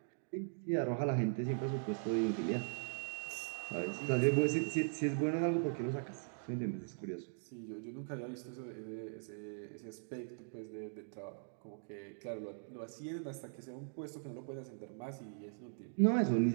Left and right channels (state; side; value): silent; left; digital silence